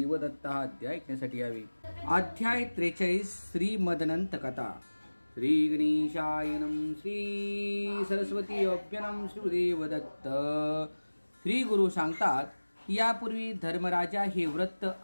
दत्त हा अध्याय ऐकण्यासाठी यावे। अध्याय 43 श्री मदनंत कथा। श्री गणेशाय नमः। श्री सरस्वती अभ्यनम श्री गुरुदेव दत्त। श्री गुरु सांगतात, यापूर्वी धर्मराजा हे व्रत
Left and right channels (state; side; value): inverted; both; correlation -1.00